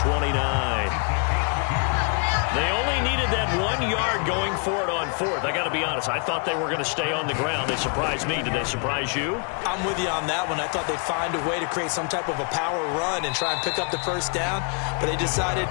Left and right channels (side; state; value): right; quieter; 38.2 dB